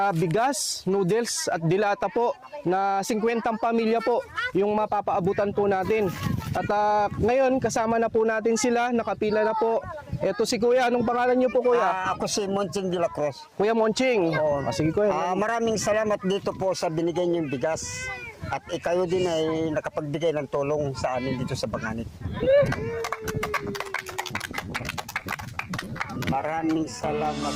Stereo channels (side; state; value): both; identical; correlation 1.00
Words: bigas, noodles at dilata po na 50 pamilya po yung mapapaabutan po natin. At ngayon kasama na po natin sila, nakapila na po. Ito si Kuya, anong pangalan niyo po Kuya? Ako si Monching de la Cruz. Kuya Monching. Oo. Sige Kuya. Maraming salamat dito po sa binigay niyong bigas. At ikayo din ay nakapagbigay ng tulong sa amin dito sa Banganit. Maraming salamat.